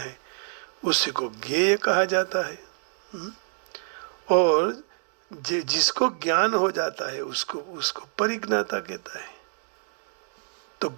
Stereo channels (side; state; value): left; silent; 60 dB below the other